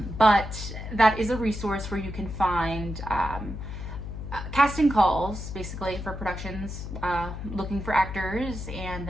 that is a resource where you can find casting calls, basically, for productions looking for actors, and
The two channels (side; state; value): left; noise; hum, 8 dB below the sound